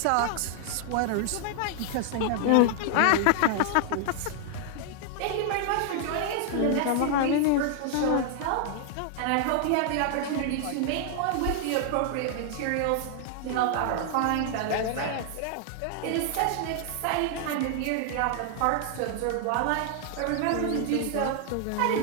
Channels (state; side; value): different; both; correlation 0.00